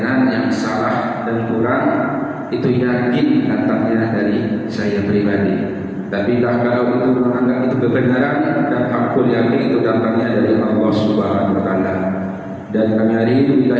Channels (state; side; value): identical; both; correlation 1.00